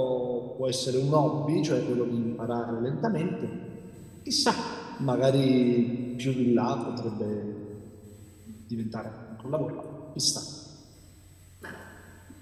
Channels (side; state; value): both; identical; correlation 1.00